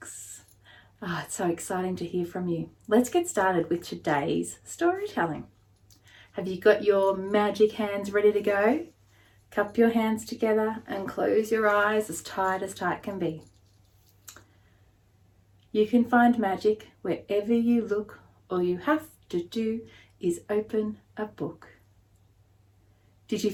Oh, it's so exciting to hear from you. Let's get started with today's storytelling. Have you got your magic hands ready to go? Cup your hands together and close your eyes as tight can be. You can find magic wherever you look. All you have to do is open a book. Did you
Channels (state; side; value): identical; both; correlation 1.00